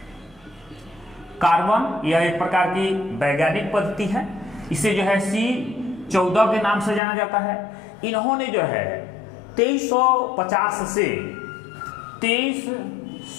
कार्बन यह एक प्रकार की वैज्ञानिक पद्धति है। इसे जो है C14 के नाम से जाना जाता है। इन्होंने जो है 2350 से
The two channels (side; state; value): right; drops out; at 7.0 s